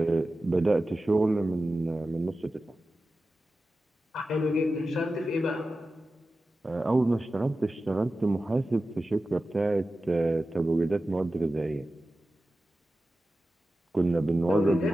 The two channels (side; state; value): both; normal; correlation 0.94